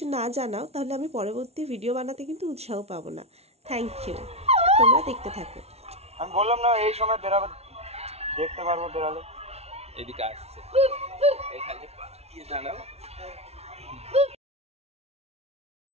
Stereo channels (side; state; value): left; late; 0.31 ms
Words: না জানাও তাহলে আমি পরবর্তী ভিডিও বানাতে কিন্তু উৎসাহ পাবো না। থ্যাংক ইউ, তোমরা দেখতে থাকো। আমি বললাম না এই সময় বেরাবে, দেখতে পারবো বেরালে। এদিকে আসছে এখানে কি জানাও